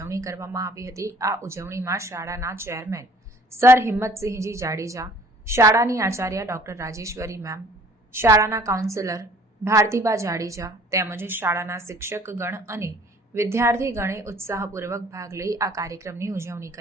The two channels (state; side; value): normal; both; correlation 0.55